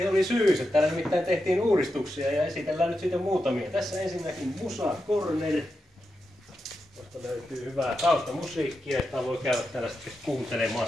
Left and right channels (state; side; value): normal; both; correlation 0.88